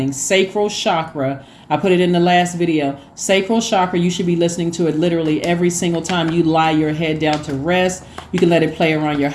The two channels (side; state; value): both; identical; correlation 1.00